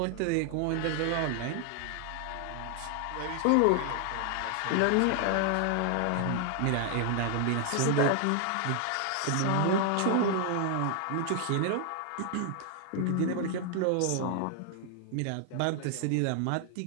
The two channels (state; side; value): different; both; correlation 0.00